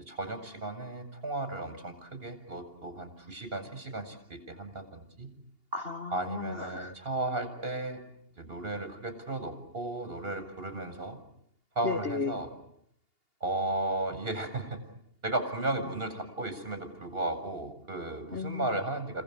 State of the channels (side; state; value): left; late; 2.8 ms